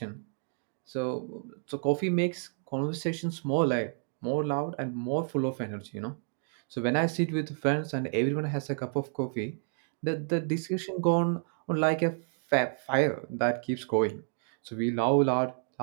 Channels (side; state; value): left; silent; digital silence